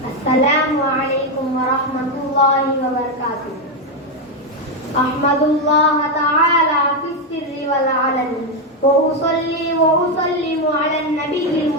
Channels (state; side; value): normal; both; correlation 0.06